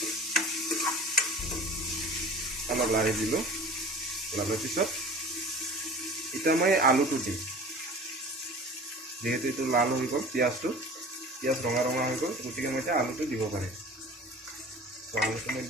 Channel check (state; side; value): normal; both; correlation 0.41